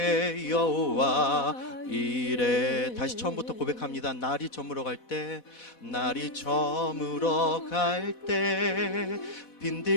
여호와 이래. 다시 처음부터 고백합니다. 날이 저물어 갈 때, 날이 저물어 갈 때,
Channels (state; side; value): late; right; 4.1 ms